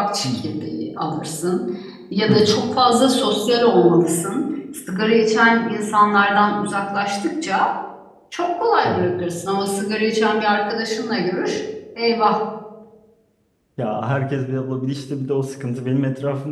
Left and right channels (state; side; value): identical; both; correlation 1.00